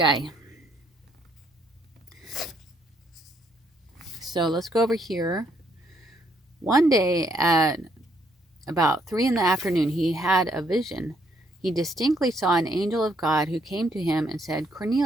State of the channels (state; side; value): normal; both; correlation 0.71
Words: So let's go over here. One day at about 3 p.m, he had a vision. He distinctly saw an angel of God who came to him and said,